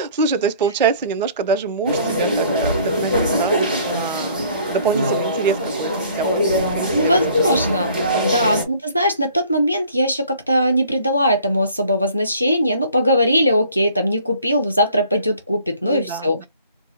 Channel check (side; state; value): both; inverted; correlation -0.55